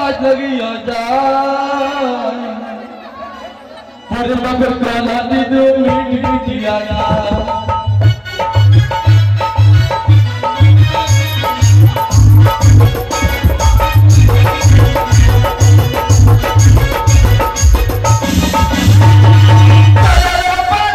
লাগিয়া যায় বাপের কলা দিদি মিট মিটিয়া যায়।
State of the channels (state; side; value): identical; both; correlation 1.00